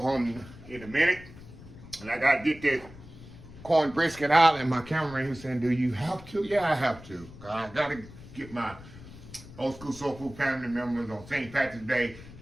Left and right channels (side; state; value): left; noise; rumble, 17 dB below the sound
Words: in a minute, and I got to get this corn brisket out, and my cameraman was saying, do you have to? Yeah, I have to. I got to get my old school soul food family members on St. Patrick's Day.